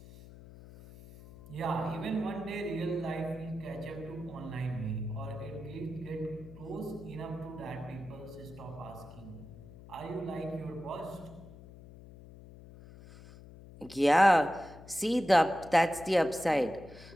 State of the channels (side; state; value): left; noise; hum, 18 dB below the sound